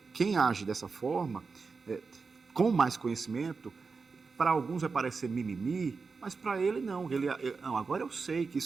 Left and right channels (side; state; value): left; quieter; 4.7 dB